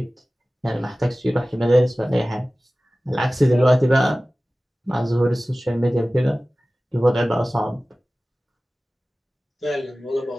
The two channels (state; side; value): normal; both; correlation 0.97